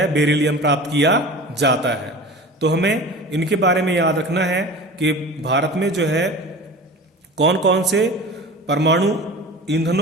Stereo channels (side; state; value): both; normal; correlation 0.36